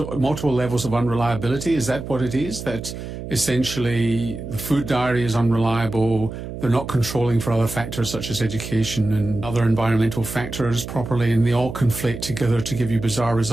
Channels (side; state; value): right; noise; hum, 9 dB below the sound